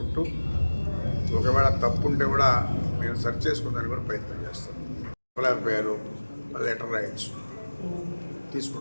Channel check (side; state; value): both; inverted; correlation -1.00